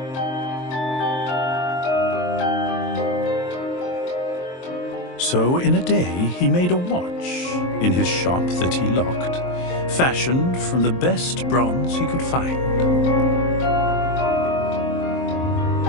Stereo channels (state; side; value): late; right; 23 ms